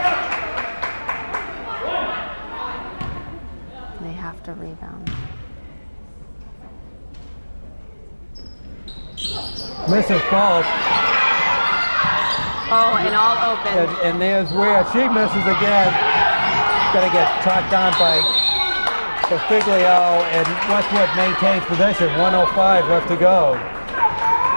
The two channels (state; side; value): inverted; both; correlation -1.00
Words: They have to rebound. Misses both. Oh, and all open. And there's Ware. She misses again. Gonna get tracked down by Figlio, and Westwood maintains possession. 1:05 left to go.